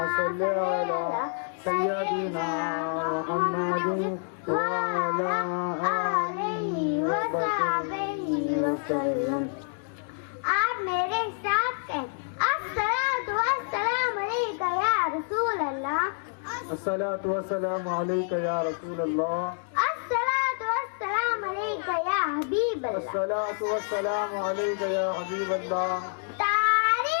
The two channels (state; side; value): silent; right; 60 dB below the other